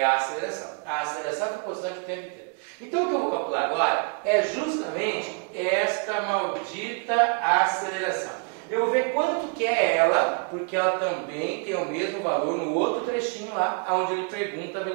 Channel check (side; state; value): left; quieter; 37.9 dB